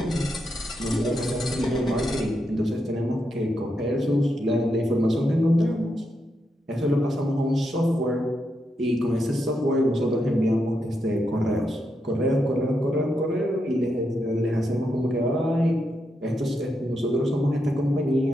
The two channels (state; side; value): normal; both; correlation 0.83